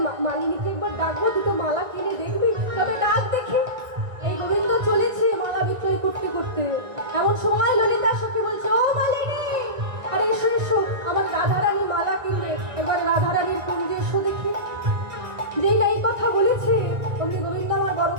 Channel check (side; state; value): left; late; 1.9 ms